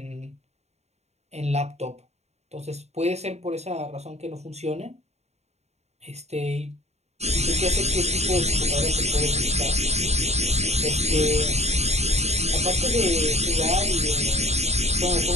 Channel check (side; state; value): left; late; 0.32 ms